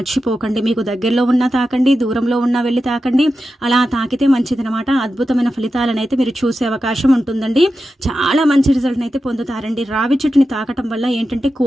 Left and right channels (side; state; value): both; normal; correlation 0.91